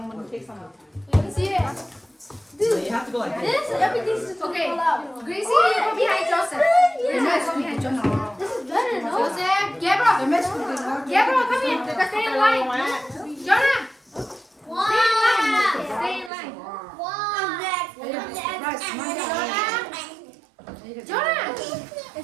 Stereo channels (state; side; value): drops out; left; at 16.3 s